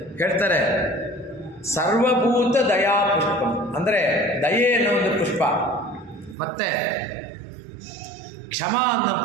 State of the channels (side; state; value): left; drops out; at 6.4 s